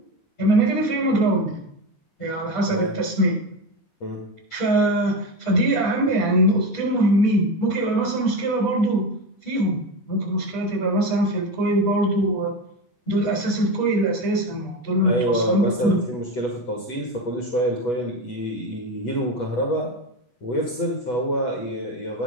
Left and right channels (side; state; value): right; late; 8.1 ms